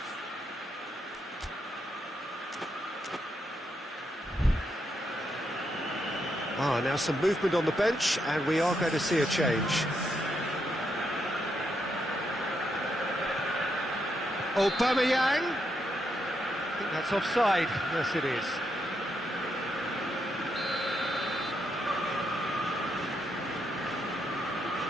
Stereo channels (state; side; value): normal; both; correlation 0.80